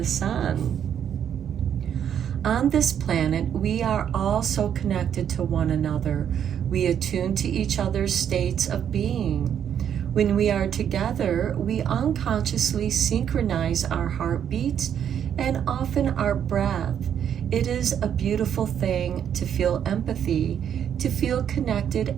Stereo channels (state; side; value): quieter; left; 9.0 dB